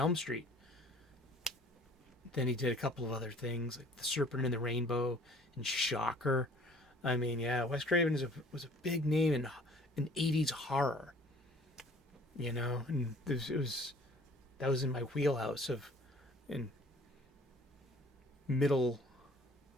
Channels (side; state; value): both; normal; correlation 0.53